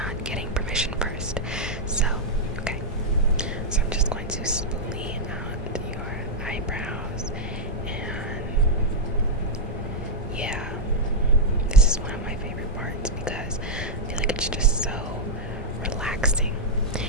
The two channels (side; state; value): both; normal; correlation -0.03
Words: getting permission first. So, okay. So I'm just going to spoolie out your eyebrows, and yeah, this is one of my favorite parts because I feel like it's just so relaxing.